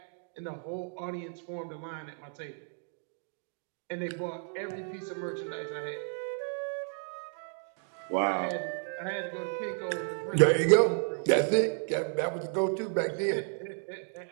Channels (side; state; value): left; silent; 56 dB below the other